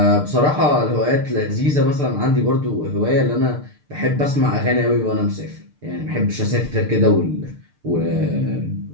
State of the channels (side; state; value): left; late; 6.7 ms